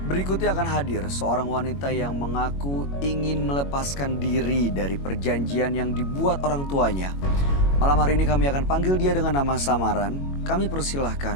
Berikutnya akan hadir seorang wanita yang mengaku ingin melepaskan diri dari perjanjian yang dibuat orang tuanya. Malam hari ini kami akan panggil dia dengan nama samaran. Kami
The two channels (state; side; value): late; right; 21 ms